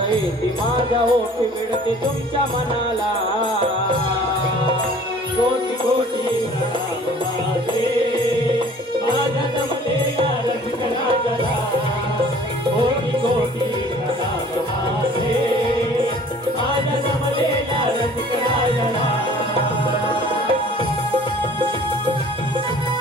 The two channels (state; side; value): normal; both; correlation 0.51